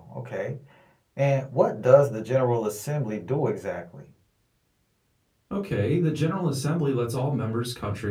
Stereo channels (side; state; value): both; identical; correlation 1.00